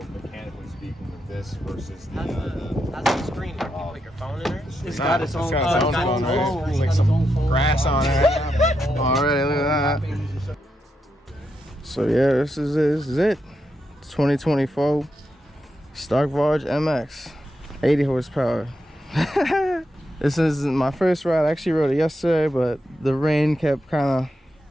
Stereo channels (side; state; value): both; normal; correlation 0.84